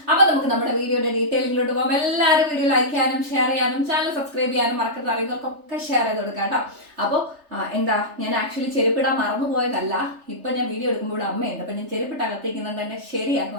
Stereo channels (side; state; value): left; late; 3.4 ms